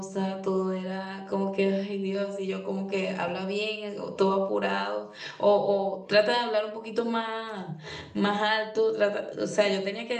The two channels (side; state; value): both; identical; correlation 1.00